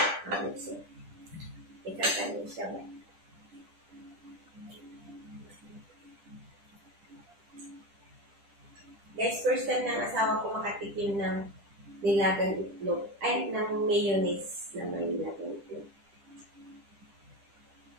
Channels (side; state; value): left; late; 10 ms